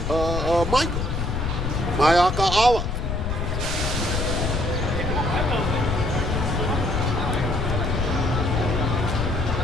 Michael, Mayaka Allah.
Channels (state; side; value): noise; left; rumble, 2 dB below the sound